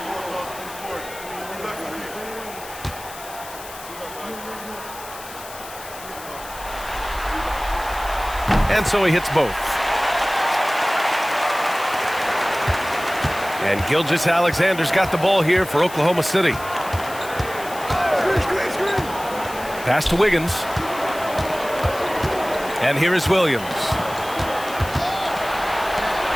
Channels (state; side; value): noise; left; hiss, 15 dB below the sound